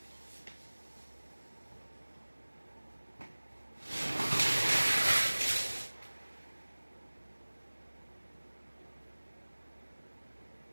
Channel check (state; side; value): inverted; both; correlation -1.00